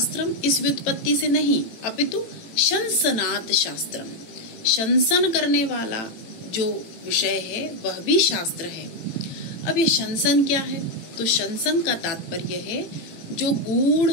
इस व्युत्पत्ति से नहीं, अपितु शंसनात् शास्त्रम, शंसन करने वाला जो विषय है वह भी शास्त्र है। अब ये शंसन क्या है? तो शंसन का तात्पर्य है जो गूढ़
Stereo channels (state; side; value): late; right; 18 ms